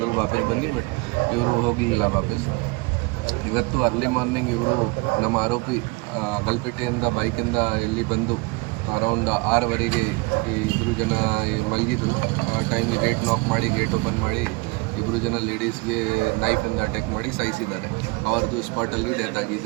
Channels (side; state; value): left; quieter; 25.8 dB